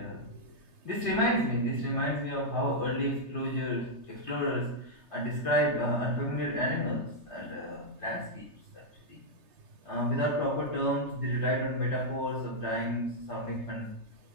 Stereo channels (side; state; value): left; late; 3.3 ms